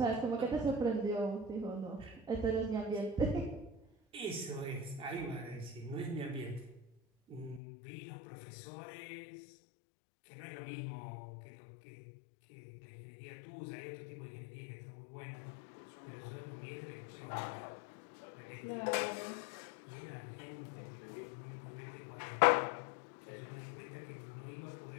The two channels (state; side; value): drops out; right; at 7.6 s